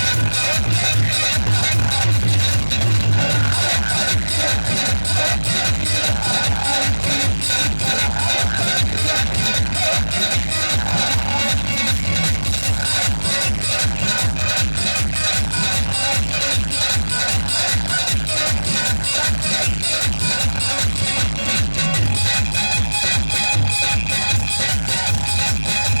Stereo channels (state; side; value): inverted; both; correlation -1.00